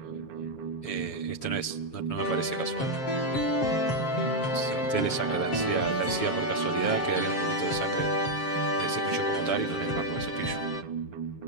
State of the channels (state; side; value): late; right; 7.1 ms